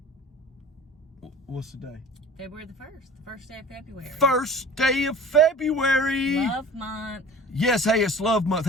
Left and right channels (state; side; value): normal; both; correlation 0.42